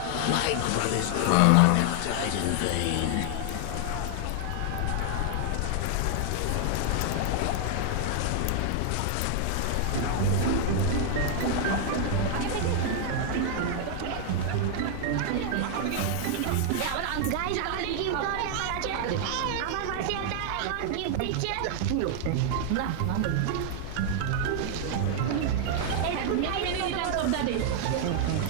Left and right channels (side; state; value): both; different; correlation 0.00